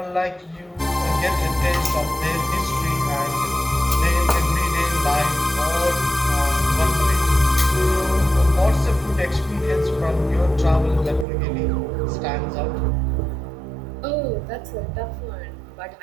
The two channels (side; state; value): left; drops out; at 11.2 s